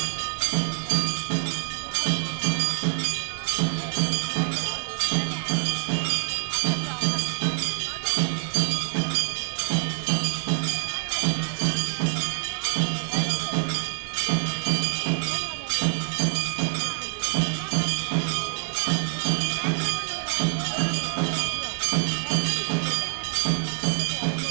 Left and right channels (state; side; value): silent; left; 61 dB below the other